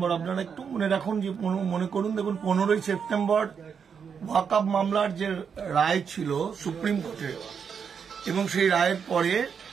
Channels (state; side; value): quieter; left; 6.7 dB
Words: আপনারা একটু মনে রাখুন, যে মনে করুন, দেখুন 15ই সেপ্টেম্বর ওয়াকফ মামলার যে রায় ছিল সুপ্রিম কোর্টে, এবং সেই রায়ের পরে